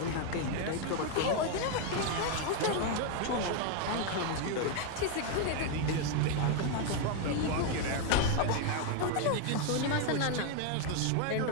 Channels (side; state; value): both; different; correlation 0.01